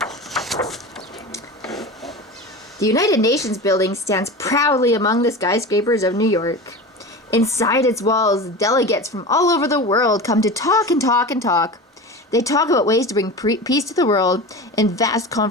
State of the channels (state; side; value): normal; both; correlation 0.30